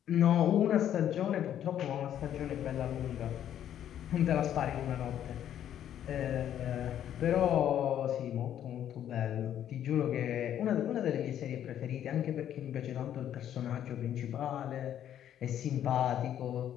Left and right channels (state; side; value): quieter; right; 10.5 dB